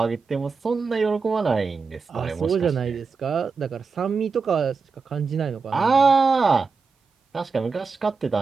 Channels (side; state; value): left; quieter; 4.8 dB